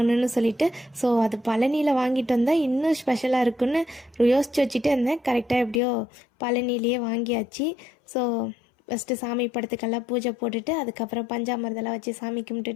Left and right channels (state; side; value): drops out; right; at 5.8 s